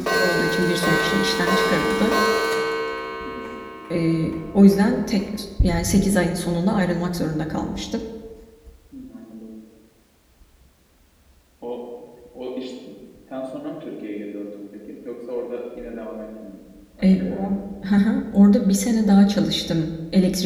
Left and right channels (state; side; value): identical; both; correlation 1.00